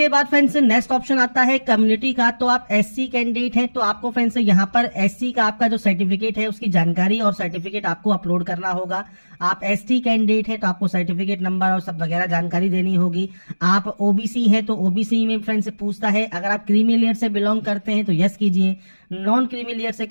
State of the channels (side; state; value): both; inverted; correlation -1.00